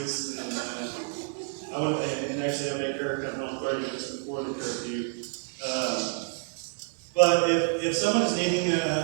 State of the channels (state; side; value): silent; left; 59 dB below the other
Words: And actually I make her come home 30 minutes before the curfew. But if someone is needing